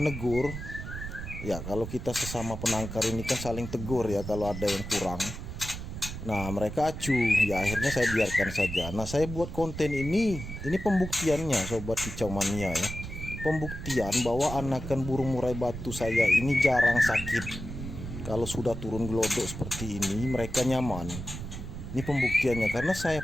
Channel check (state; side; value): noise; right; rumble, 8 dB below the sound